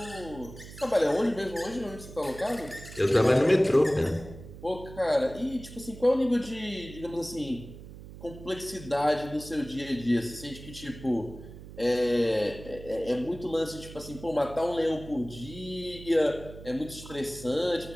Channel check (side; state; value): right; noise; hum, 15 dB below the sound